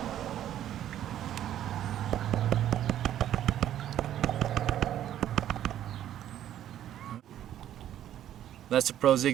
that's the Pro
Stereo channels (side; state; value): left; quieter; 11.4 dB